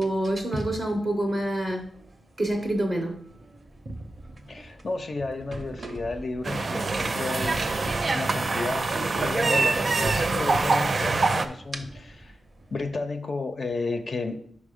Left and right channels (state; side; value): normal; both; correlation 0.91